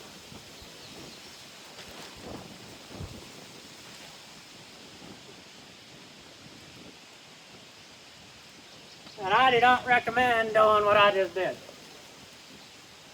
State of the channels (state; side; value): identical; both; correlation 1.00